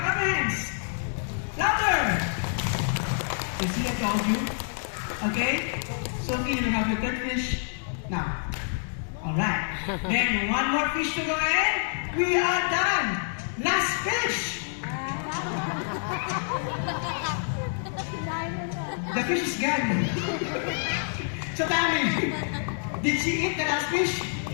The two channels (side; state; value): right; silent; digital silence